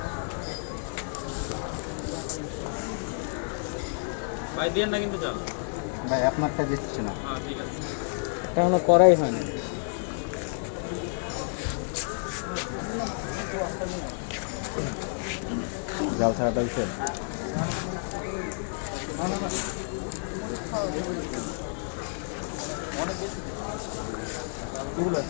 ভাই দেন না কিন্তু জাল ভাই আপনারটা দিচ্ছি না হ্যাঁ ঠিক আছে এটা কোনো করাই হয় না জাল ছাড়া পাইছে অনেক বেশি পুরো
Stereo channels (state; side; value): silent; right; 58 dB below the other